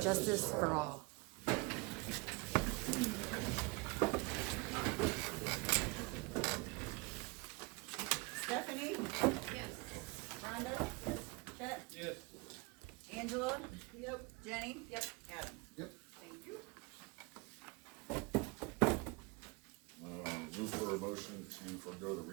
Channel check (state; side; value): quieter; left; 27.4 dB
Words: justice for all. Stephanie? Yes. Rhonda? Yes. Chet? Yes. Angela? Yep. Jenny? Yep. Adam? Yep. Thank you. Move for a motion to forego the